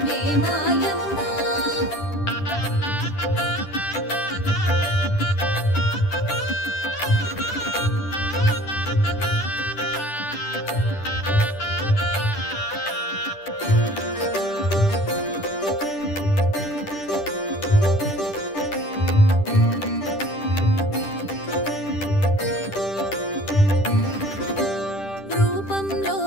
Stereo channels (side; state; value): right; late; 10 ms